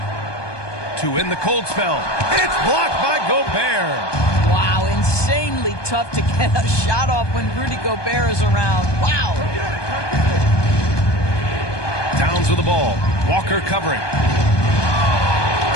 To end the cold spell. It's blocked by Gobert. Wow, insanely tough to get a shot off when Rudy Gobert is around. Wow. Towns with the ball. Walker covering.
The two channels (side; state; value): right; late; 1.2 ms